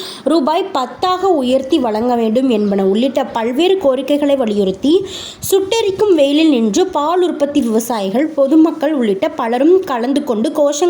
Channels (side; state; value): both; identical; correlation 1.00